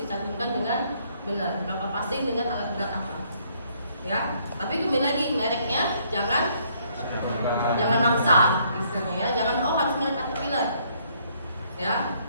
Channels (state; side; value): inverted; both; correlation -0.67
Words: dengan benar, berapa passing dengan alat berat apa ya. Tapi kembali lagi, mereknya jangan maksa istilahnya ya, jangan harus merek Caterpillar ya,